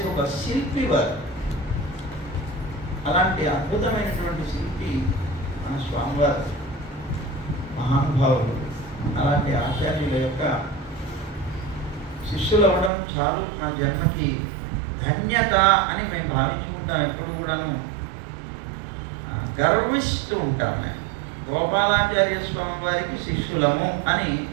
ఒక శిల్పి వారు. అలాంటి అద్భుతమైనటువంటి శిల్పి మన స్వామివారు, మహానుభావులు. అలాంటి ఆచార్యుల యొక్క శిష్యులు అవ్వడం చాలు నా జన్మకి ధన్యత అని మేము భావించుకుంటాం. ఎప్పుడు కూడాను గర్విస్తూ ఉంటాము. గోపాలాచార్య స్వామి వారికి శిష్యులము అని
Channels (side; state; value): left; drops out; at 12.9 s